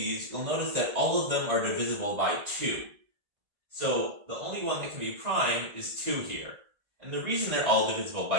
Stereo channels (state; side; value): late; left; 1.8 ms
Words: you'll notice that all of them are divisible by 2. So the only one that can be prime is 2 here. And the reason they're all divisible